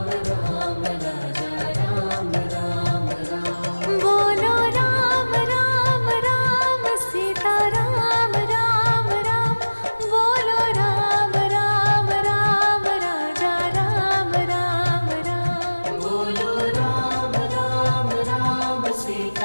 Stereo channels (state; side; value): inverted; both; correlation -1.00